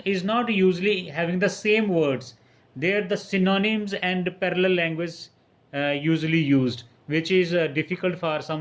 is not usually having the same words. There the synonyms and parallel language usually used, which is difficult for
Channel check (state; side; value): identical; both; correlation 1.00